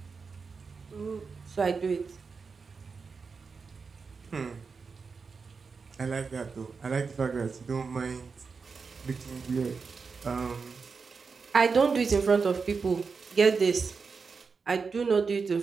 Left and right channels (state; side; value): quieter; left; 5.0 dB